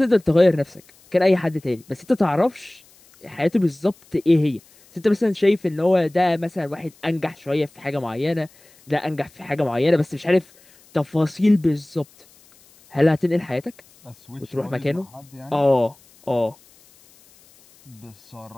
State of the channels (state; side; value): noise; left; hiss, 28 dB below the sound